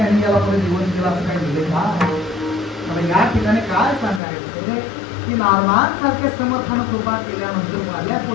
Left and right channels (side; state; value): right; drops out; at 4.2 s